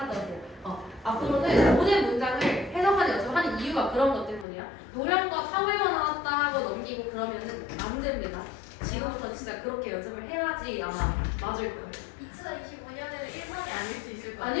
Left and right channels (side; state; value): right; drops out; at 4.5 s